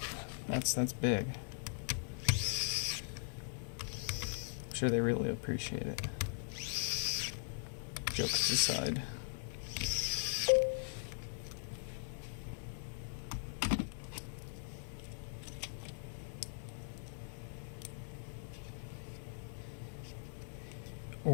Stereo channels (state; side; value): silent; right; digital silence